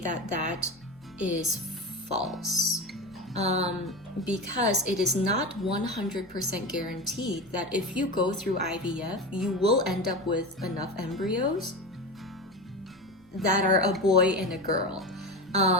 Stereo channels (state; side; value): normal; both; correlation 0.24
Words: that is false, because it is not 100% guaranteed that if you go through IVF, you will end up with enough embryos that are a boy and a girl.